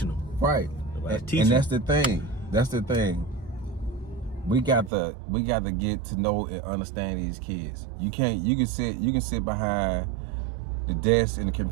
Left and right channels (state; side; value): drops out; left; at 4.9 s